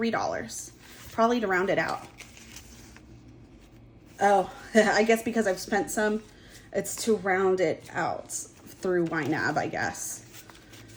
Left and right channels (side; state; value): both; identical; correlation 1.00